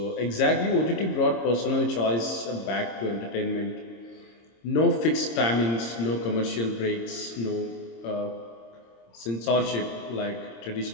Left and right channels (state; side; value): late; right; 26 ms